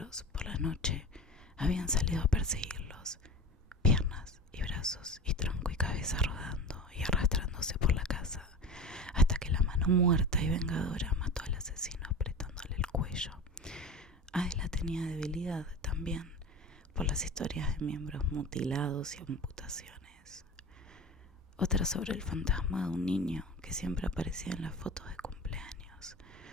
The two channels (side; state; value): both; normal; correlation 0.31